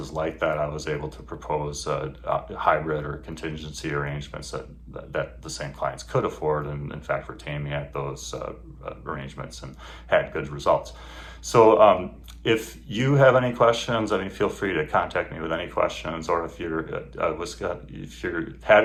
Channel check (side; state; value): both; identical; correlation 1.00